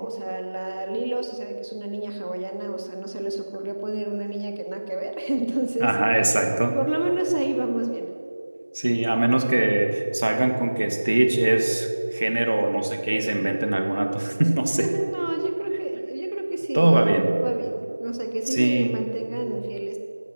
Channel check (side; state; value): both; inverted; correlation -1.00